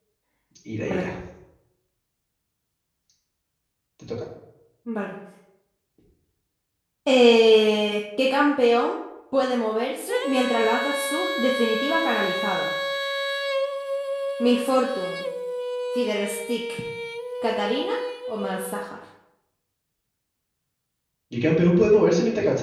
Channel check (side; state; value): both; identical; correlation 1.00